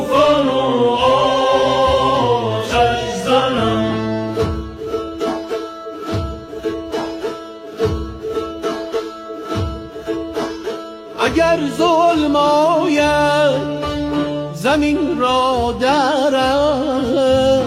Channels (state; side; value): identical; both; correlation 1.00